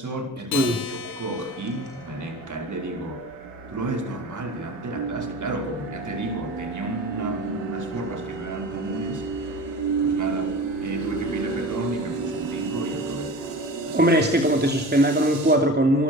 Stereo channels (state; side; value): normal; both; correlation 0.34